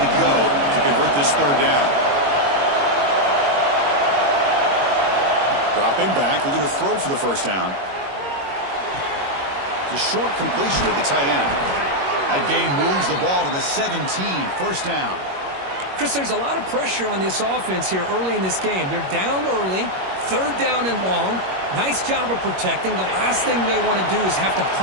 go to convert this third down. Dropping back, looking to throw for the first down. It's a short completion of the tight end. That gain moves the ball to the 17, first down. Chris, there's a lot of pressure on this offense here early in this game. They're down early, third down and long. Nice job of protecting. The last thing they want to do is have to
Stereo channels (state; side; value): late; left; 21 ms